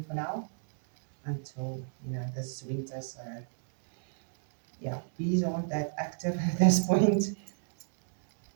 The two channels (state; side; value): silent; left; digital silence